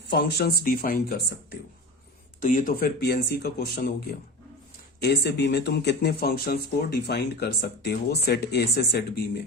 फंक्शंस डिफाइन कर सकते हो। तो ये तो फिर पीएनसी का क्वेश्चन हो गया। ए से बी में तुम कितने फंक्शंस को डिफाइन कर सकते हो सेट ए से सेट बी में,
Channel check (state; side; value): normal; both; correlation 0.28